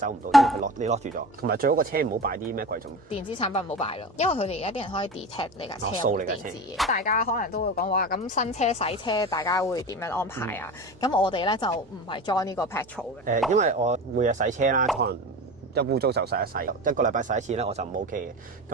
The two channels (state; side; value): normal; both; correlation 0.30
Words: 唔到，因為你落住咗。同埋最好個車唔好擺啲咩貴重電子產品，唔好擺咯，因為佢哋而家啲人可以 detect 你架車有冇電子嘢。大家可能都會講話咁新車洗車，大家會點樣安排啊？咁我哋咧就唔係 join 呢個 petrol 嘅。因為我每日洗車啦，可能一污糟就洗一洗，一個禮拜洗一次咧，我就唔 OK 嘅。